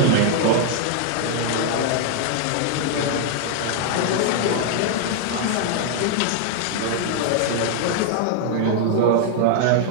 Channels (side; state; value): both; different; correlation 0.00